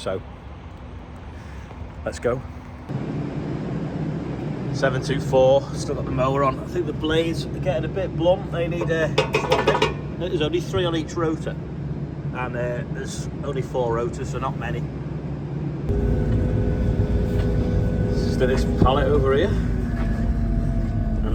let's go. 724, still got the mower on. I think the blades are getting a bit blunt. They need a swapping. There's only 3 on each rotor. And there's only 4 rotors, so not many. Just do this pallet over here, and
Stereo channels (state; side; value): identical; both; correlation 1.00